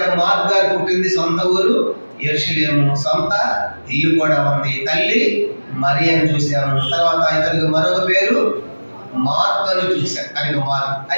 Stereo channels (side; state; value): both; inverted; correlation -1.00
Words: మార్కు గారు పుట్టింది సొంత ఊరు యెరూషలేము, సొంత ఇల్లు కూడా ఉంది. తల్లి మరియను చూసాము. తర్వాత ఇతనికి మరొక పేరు మార్కు అని చూశారు. కనుక మార్కు.